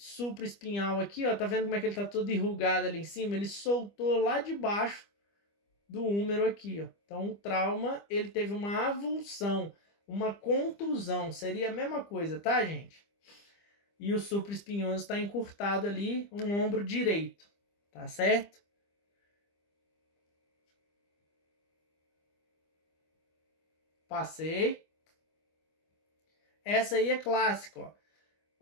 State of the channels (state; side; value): late; right; 25 ms